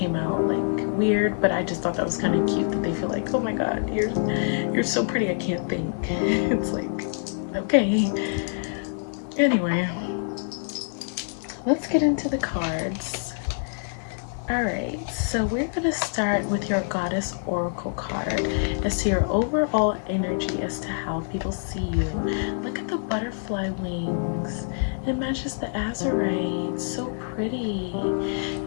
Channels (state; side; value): silent; right; 57 dB below the other